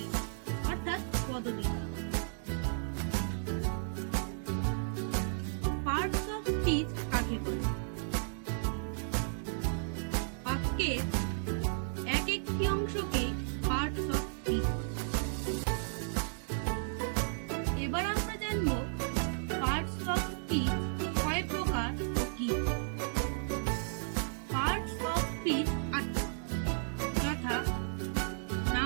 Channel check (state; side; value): silent; left; digital silence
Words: অর্থাৎ পদবিকা। পার্টস অফ স্পিচ কাকে বলে? বাক্যের এক একটি অংশকে পার্টস অফ স্পিচ। এবার আমরা জানবো পার্টস অফ স্পিচ কয় প্রকার ও কি। পার্টস অফ স্পিচ যথা